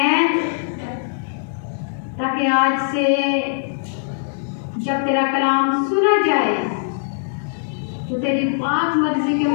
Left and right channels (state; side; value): silent; right; digital silence